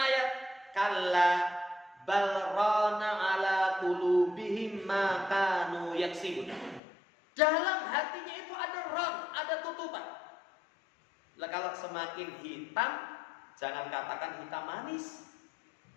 kalla bal rana ala qulubihim ma kanu yaksibun. Dalam hatinya itu ada ram, ada tutupan. Lah kalau semakin hitam, jangan katakan hitam manis.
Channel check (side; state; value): right; drops out; at 6.8 s